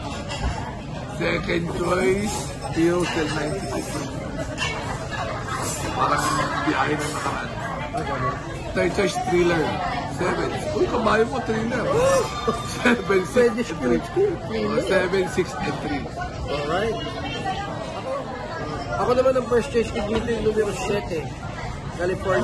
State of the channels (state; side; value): identical; both; correlation 1.00